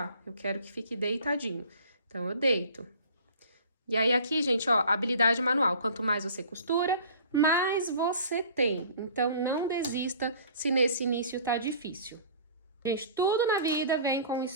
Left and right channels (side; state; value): both; inverted; correlation -0.47